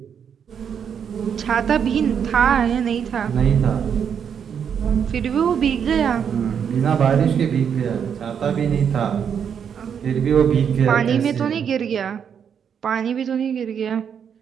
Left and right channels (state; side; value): quieter; left; 7.7 dB